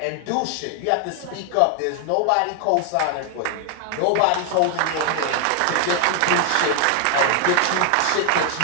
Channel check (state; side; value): different; both; correlation 0.00